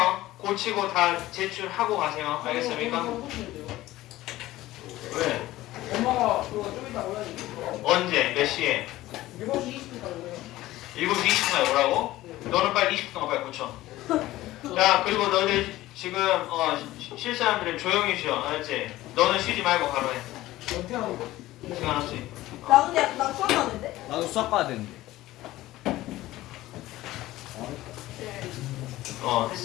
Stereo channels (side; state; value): right; quieter; 16.5 dB